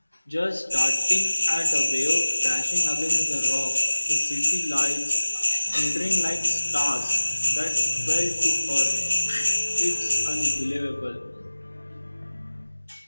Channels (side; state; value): both; inverted; correlation -1.00